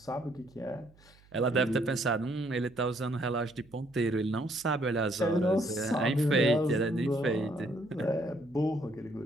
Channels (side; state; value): right; noise; hum, 28 dB below the sound